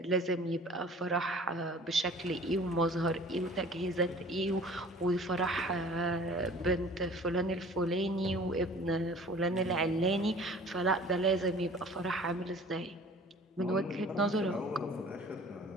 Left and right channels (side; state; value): both; normal; correlation 0.47